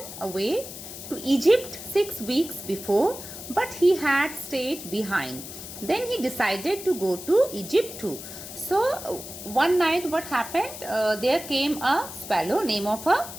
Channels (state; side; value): noise; left; hiss, 11 dB below the sound